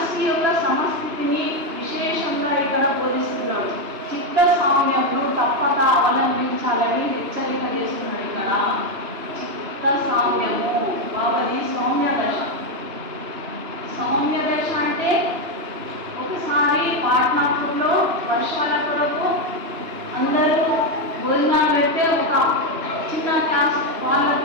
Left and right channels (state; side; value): late; left; 2.9 ms